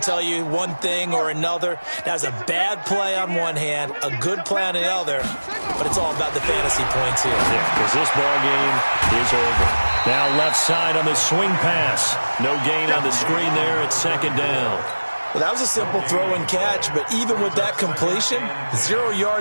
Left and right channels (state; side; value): inverted; both; correlation -1.00